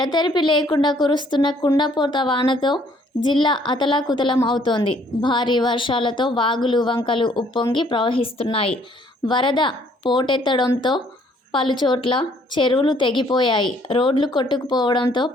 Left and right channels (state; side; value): normal; both; correlation 0.63